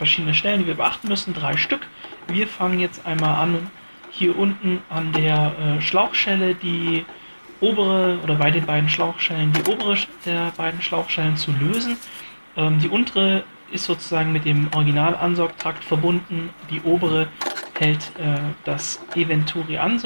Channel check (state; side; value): inverted; both; correlation -1.00